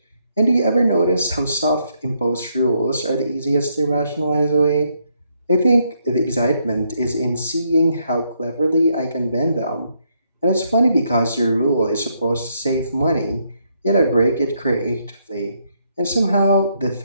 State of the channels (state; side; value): inverted; both; correlation -0.75